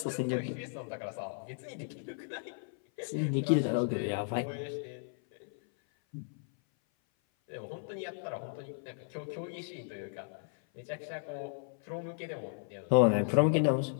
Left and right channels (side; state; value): right; silent; 55 dB below the other